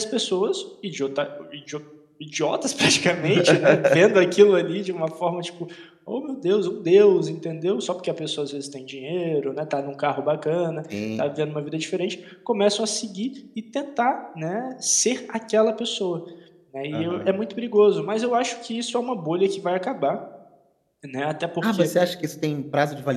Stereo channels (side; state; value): both; identical; correlation 1.00